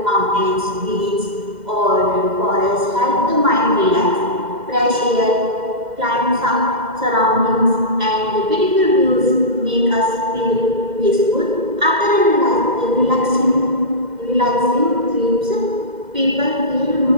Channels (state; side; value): late; left; 2.0 ms